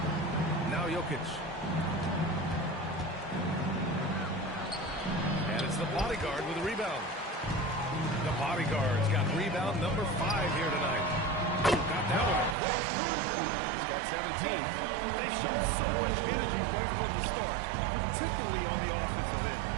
Now Jokic. And it's the bodyguard with a rebound. The bodyguard's got rebound number 5 here tonight. Got that one quick. He's got 17. They've shown so much energy right from the start, particularly on the offensive end.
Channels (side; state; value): left; drops out; at 12.6 s